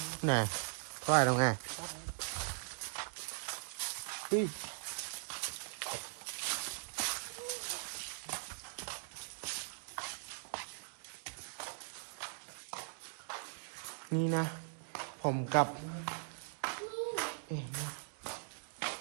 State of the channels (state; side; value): silent; left; digital silence